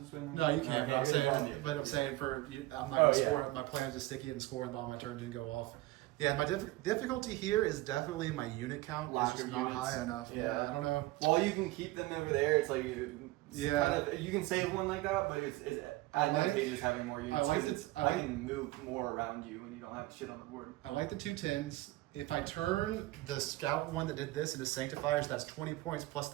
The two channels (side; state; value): left; quieter; 18.8 dB